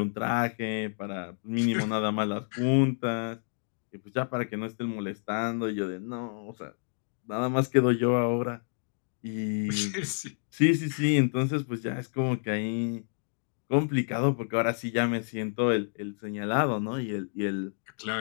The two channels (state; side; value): silent; right; digital silence